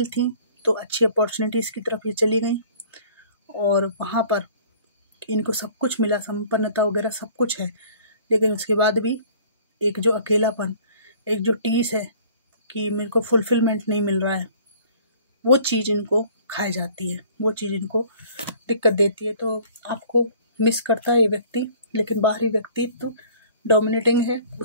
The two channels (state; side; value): inverted; both; correlation -0.53